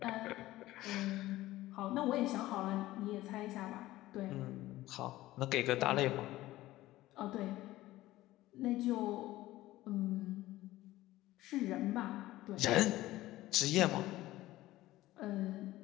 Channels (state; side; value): quieter; right; 16.5 dB